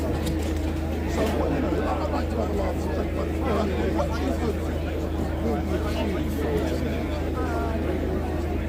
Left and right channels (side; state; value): both; identical; correlation 1.00